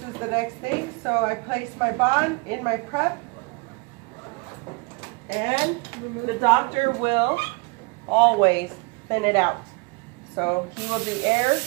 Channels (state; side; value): quieter; left; 28.9 dB